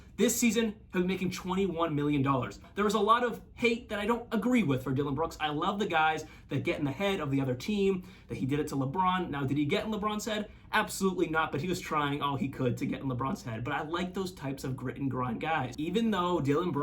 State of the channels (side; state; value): both; identical; correlation 1.00